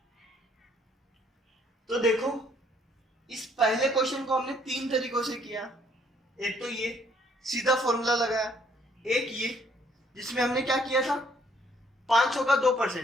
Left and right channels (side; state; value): both; normal; correlation 0.65